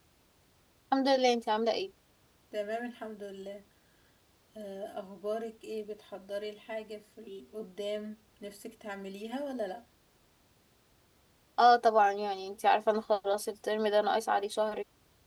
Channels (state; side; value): identical; both; correlation 1.00